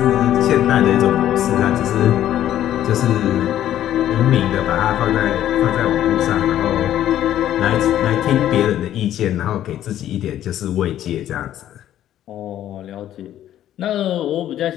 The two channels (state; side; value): quieter; right; 11.9 dB